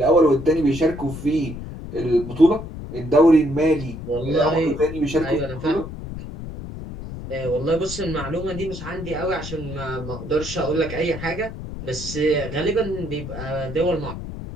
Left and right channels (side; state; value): left; noise; rumble, 10 dB below the sound